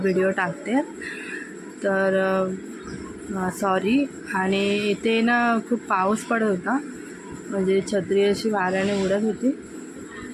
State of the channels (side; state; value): both; identical; correlation 1.00